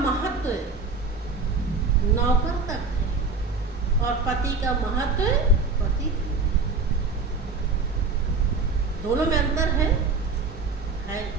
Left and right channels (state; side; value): quieter; left; 4.1 dB